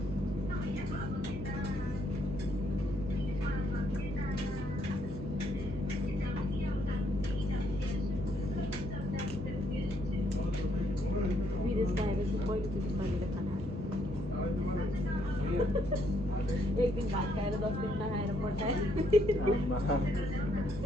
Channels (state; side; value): noise; right; hum, 12 dB below the sound